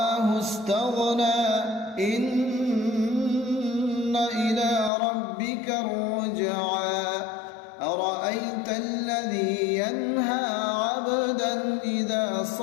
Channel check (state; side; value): drops out; right; at 4.9 s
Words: استغنى. إن إلى ربك الرجعى. أرأيت الذي ينهى عبدا إذا